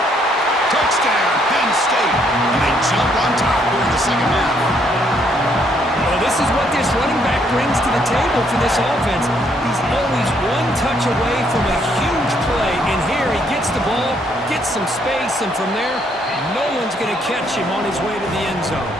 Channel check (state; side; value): normal; both; correlation 0.70